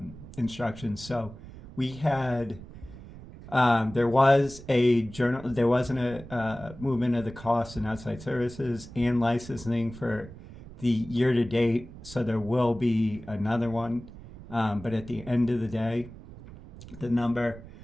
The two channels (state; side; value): noise; right; rumble, 16 dB below the sound